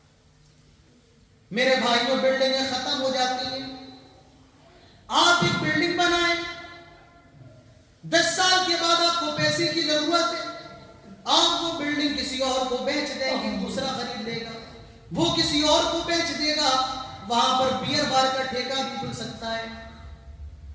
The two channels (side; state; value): both; identical; correlation 1.00